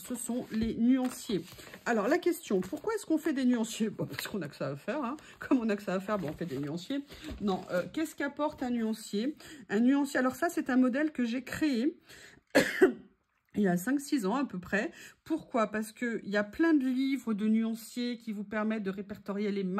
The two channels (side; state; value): both; identical; correlation 1.00